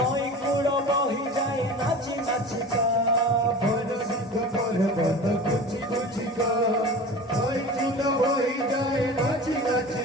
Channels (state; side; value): normal; both; correlation 0.35